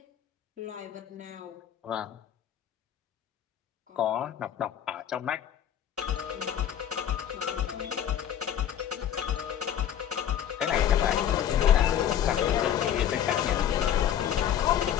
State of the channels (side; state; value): right; quieter; 10.0 dB